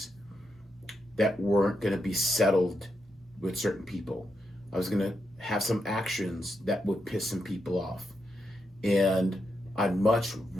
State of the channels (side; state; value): both; normal; correlation 0.84